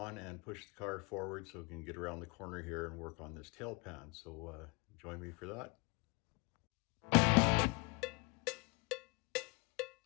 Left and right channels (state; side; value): quieter; right; 27.7 dB